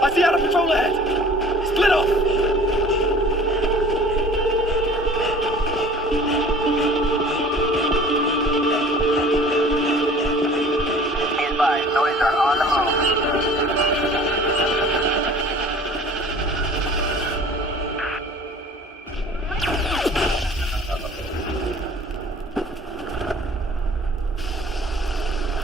I see Outer Patrol ahead! Split off! Be advised, noids are on the move.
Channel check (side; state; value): both; normal; correlation 0.47